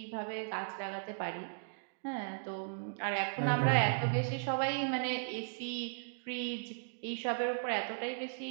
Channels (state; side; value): silent; left; digital silence